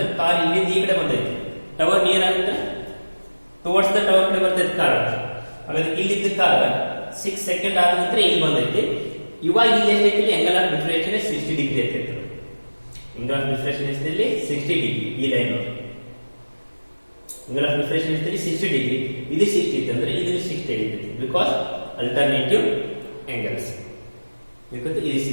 ಕಾರ್ ಇಲ್ಲಿಂದ ಈ ಕಡೆ ಬಂದೈತಿ. ಟವರ್ ನಿಯರ್ ಆಗುತ್ತೆ ಟುವರ್ಡ್ಸ್ ದ ಟವರ್ ಕಡೆ ಬರ್ತೈತಿ ಕಾರ್. ಹಾಗಾದ್ರೆ ಇಲ್ಲಿದ್ದ ಕಾರ್ 6 seconds ಆದ ನಂತರ ಇಲ್ಲಿ ಬಂದೈತಿ. ಇವಾಗ ಇಲ್ಲಿ ಎಷ್ಟೈತಿ angle of diffraction 60 ಡಿಗ್ರಿ ಐತಿ. angle of diffraction ಎಷ್ಟಿದೆ 60 ಡಿಗ್ರಿ. ಈ ಲೈನ್ angle of diffraction ಎಷ್ಟಿದೆ 60 ಡಿಗ್ರಿ. ಇದು 60 ಐತಿ ಅಂದ್ರೆ ಇದು 60 ಐತಿ ಬಿಕಾಸ್ ಅಲ್ಟರ್ನೇಟಿವ್ angles. because ಇದು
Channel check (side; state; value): both; inverted; correlation -1.00